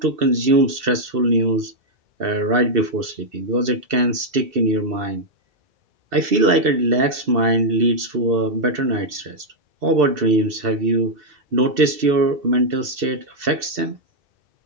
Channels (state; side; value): late; left; 2.7 ms